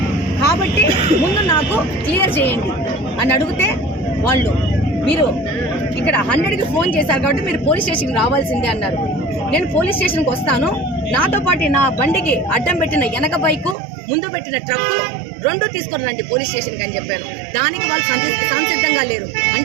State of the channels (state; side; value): drops out; left; at 13.8 s